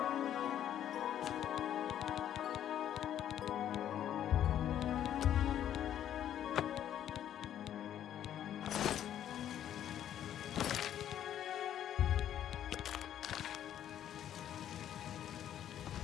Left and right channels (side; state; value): right; quieter; 10.7 dB